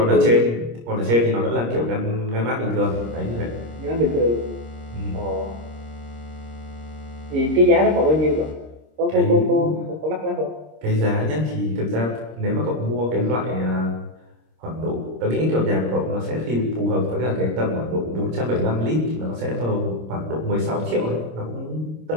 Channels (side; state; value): left; late; 26 ms